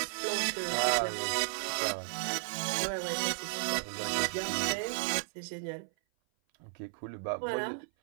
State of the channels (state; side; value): silent; left; 55 dB below the other